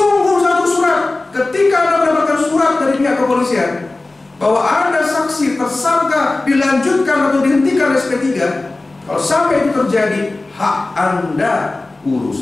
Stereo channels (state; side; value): quieter; right; 3.1 dB